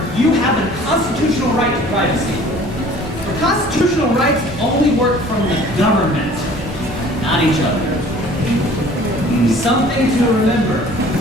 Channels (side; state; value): both; normal; correlation 0.50